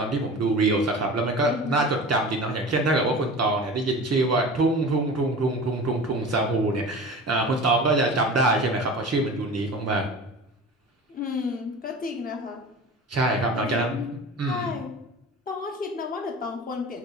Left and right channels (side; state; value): both; normal; correlation 0.35